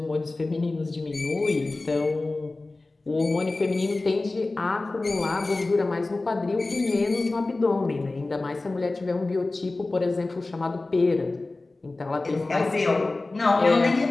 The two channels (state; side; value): quieter; right; 3.2 dB